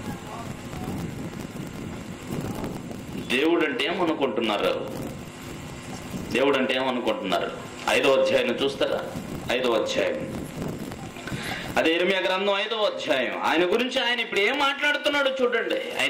దేవుడు అంటే ఏమనుకుంటున్నారు? దేవుడు అంటే ఏమనుకుంటున్నారు? 5వ అధ్యాయం చూస్తారా? 5వ అధ్యాయం, అదే ఇర్మియా గ్రంథం 5వ అధ్యాయం. ఆయన గురించి ఆయన ఇప్పుడు ఏం మాట్లాడుతున్నాడు చూడండి.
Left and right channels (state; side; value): identical; both; correlation 1.00